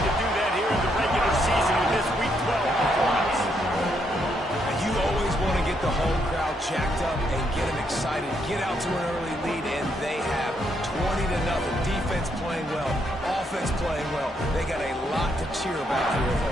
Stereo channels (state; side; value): normal; both; correlation 0.76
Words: to do that here in the regular season with this Week 12 performance. You always want to get the home crowd jacked up and get them excited. Get out to an early lead, and they have 20-0. Defense playing well, offense playing well. They got a lot to cheer about here at